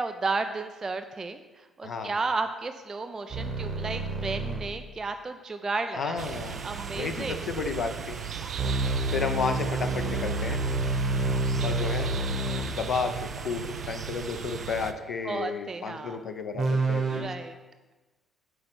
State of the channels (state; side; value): normal; both; correlation 0.45